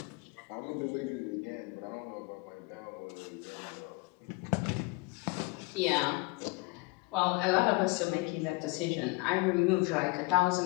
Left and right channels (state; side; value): quieter; right; 27.2 dB